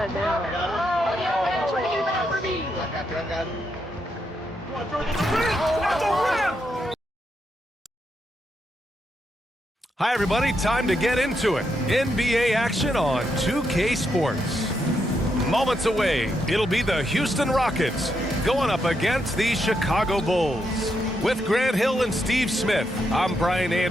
now. Hi, everybody. Time to get into it. NBA action on 2K Sports. Moments away, it'll be the Houston Rockets going up against the Chicago Bulls. With Grant Hill and Steve Smith, I'm Brian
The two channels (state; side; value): normal; both; correlation 0.81